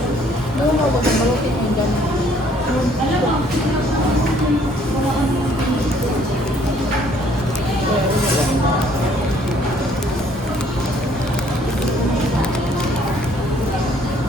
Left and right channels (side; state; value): both; normal; correlation 0.62